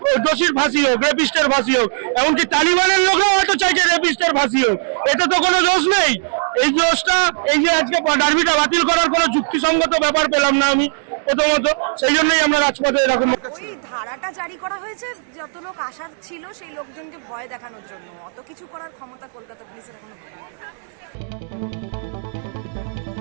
দোষীর ফাঁসি হোক, রেপিস্টের ফাঁসি হোক। এমনকি তালিবানের লোকরাও হয়তো চাইছে রেপিস্টের ফাঁসি হোক। এটা তো কোনো দোষ নেই। এই দোষটা, এই যে আজকে ডার্বিটা বাতিল করার কোনো যুক্তিসঙ্গত ব্যাপার পেলাম না আমি প্রথমত, সেই জন্যই আমরা রাজপথে এরকম। ওই ধারাটা জারি করা হয়েছে যত লোক আসার ছিল সেই লোকজনকে ভয় দেখানোর জন্য। অত কিছু করার ক্ষমতা কলকাতা পুলিশের এখনো নেই।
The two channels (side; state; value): left; silent; digital silence